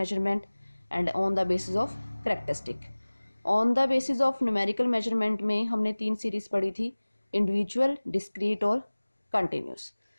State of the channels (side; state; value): both; inverted; correlation -1.00